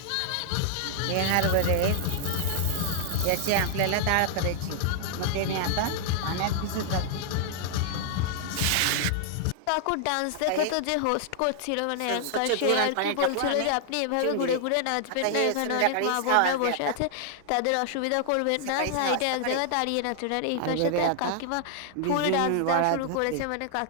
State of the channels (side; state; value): both; different; correlation -0.01